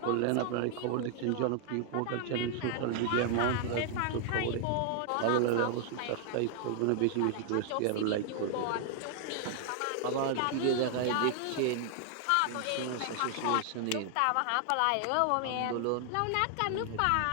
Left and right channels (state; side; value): different; both; correlation 0.00